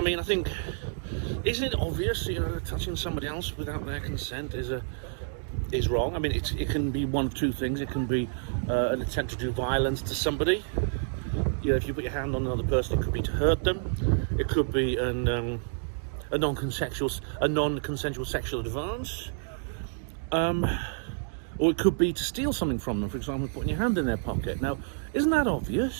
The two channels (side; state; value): left; silent; digital silence